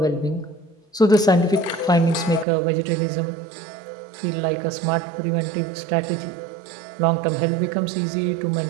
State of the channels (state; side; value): drops out; left; at 2.5 s